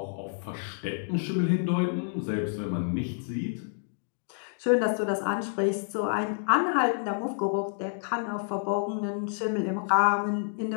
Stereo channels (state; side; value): silent; right; digital silence